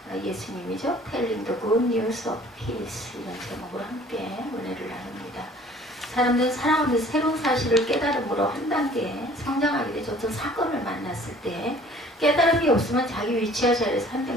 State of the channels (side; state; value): both; normal; correlation 0.52